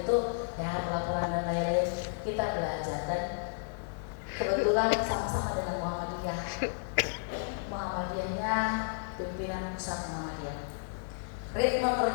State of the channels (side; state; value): right; silent; digital silence